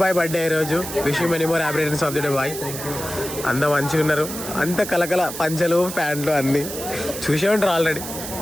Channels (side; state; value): right; noise; hiss, 8 dB below the sound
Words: బాయ్ బర్త్డే ఈ రోజు. Wish you many more happy returns of the day boy. అంతా మంచిగా ఉన్నారు. అంత కలకల పంచలు ప్యాంట్లు అన్నీ చూసే ఉంటారు ఆల్రెడీ.